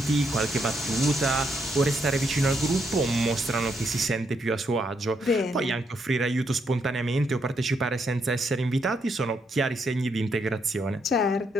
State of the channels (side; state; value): both; normal; correlation 0.77